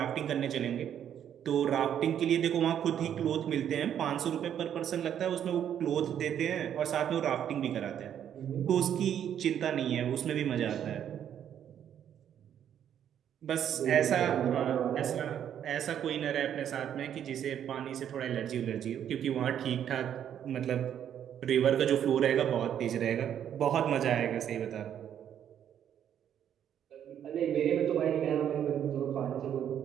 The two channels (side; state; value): left; quieter; 9.6 dB